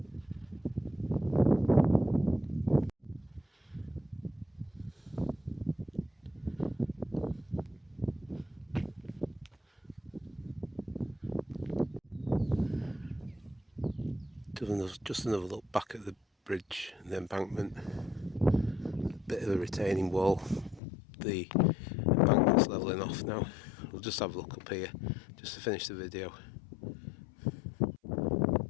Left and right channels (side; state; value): right; drops out; at 20.8 s